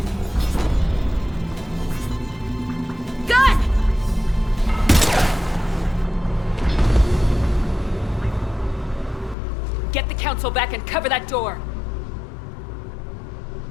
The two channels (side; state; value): right; drops out; at 9.3 s